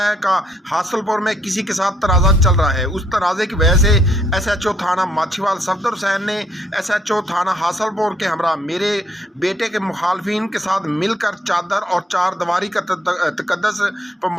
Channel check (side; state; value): both; normal; correlation 0.70